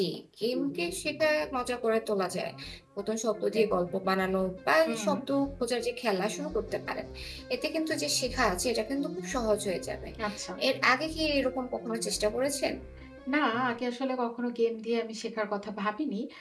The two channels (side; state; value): both; identical; correlation 1.00